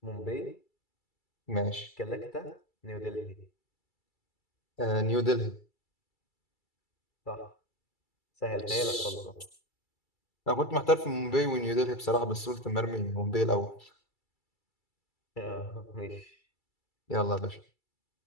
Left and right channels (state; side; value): late; right; 2.3 ms